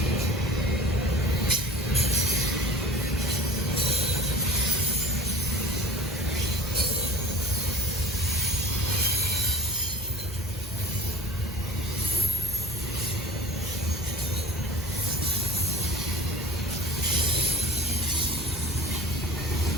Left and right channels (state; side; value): normal; both; correlation 0.40